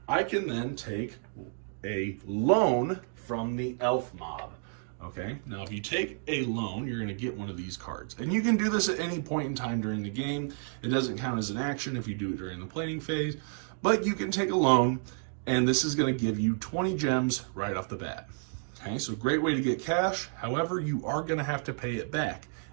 I can then take a loan from the elf mob. Okay, now if you take a loan, you're going to get one of these cards. And you can do this at any point in time during the game. It doesn't count as an action if you do it during the planning phase, but you can take a loan, and this is going to give you 20 gems right off the bat. Okay, so great way to get cash. However, you are going to have to pay it back,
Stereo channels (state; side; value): silent; left; 57 dB below the other